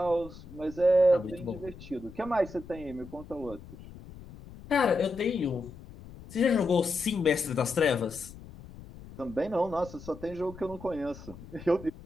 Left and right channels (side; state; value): left; noise; rumble, 17 dB below the sound